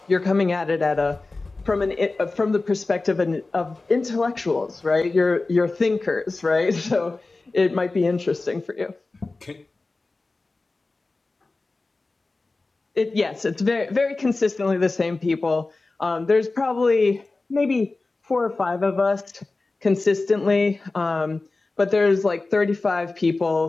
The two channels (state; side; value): quieter; right; 3.4 dB